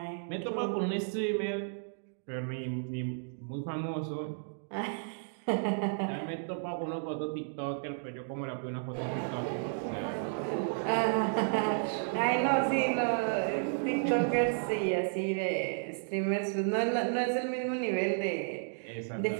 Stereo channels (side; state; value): left; silent; digital silence